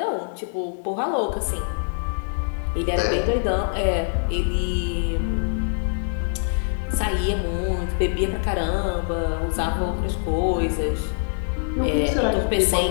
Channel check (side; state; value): right; silent; digital silence